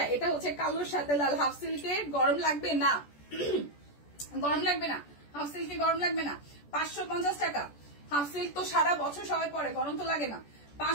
এটা হচ্ছে কালোর সাথে লাল হাফ সিল্কে। গরম লাগবে না, গরম লাগবে না, হাফ সিল্কে গরম লাগবে না। 550 টাকা। হাফ সিল্ক তো সারা বছর সবাই পরে, গরম তো লাগে না।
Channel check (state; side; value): late; right; 14 ms